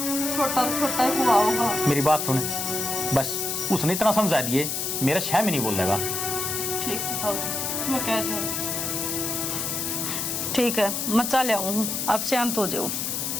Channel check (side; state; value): left; noise; hiss, 2 dB below the sound